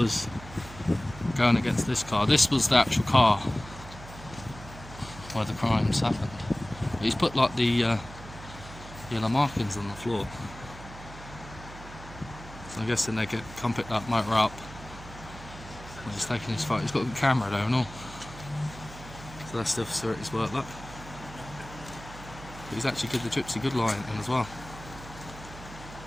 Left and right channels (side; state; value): right; noise; hum, 15 dB below the sound